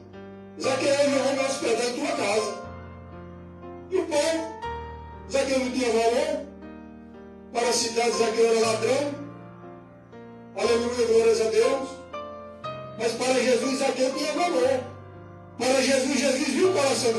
Zaqueu, eu vou me hospedar em tua casa. E o povo, Zaqueu não tinha valor. Para a cidade, Zaqueu era ladrão. Aleluia, glórias a Deus. Mas para Jesus, Zaqueu tinha valor. Para Jesus, Jesus viu o coração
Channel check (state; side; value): identical; both; correlation 1.00